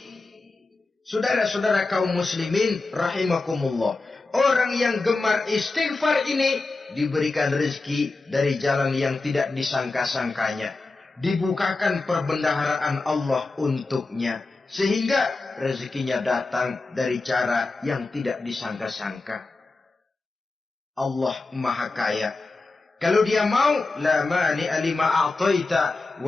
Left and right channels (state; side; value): quieter; right; 3.5 dB